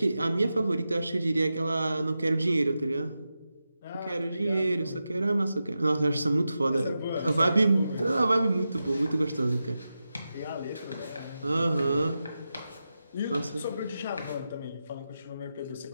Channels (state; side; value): inverted; both; correlation -0.91